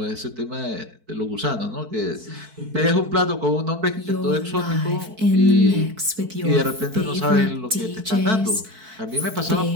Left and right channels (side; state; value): left; late; 4.5 ms